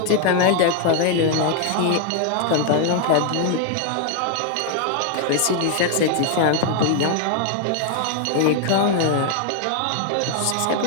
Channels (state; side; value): different; both; correlation 0.00